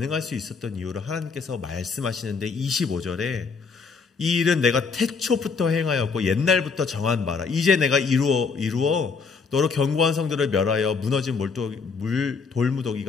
수 있었던 이유를 하나님께서 말씀하시는데 25절에 이 일은 내가 태초부터 행하였고 옛날부터 정한 바라. 이제 내가 이루어 너로 견고한 성들을 멸하여 무너진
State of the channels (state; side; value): quieter; right; 5.0 dB